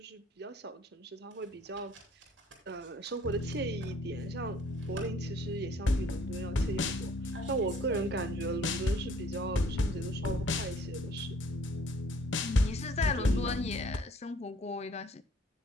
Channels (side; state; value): both; normal; correlation 0.57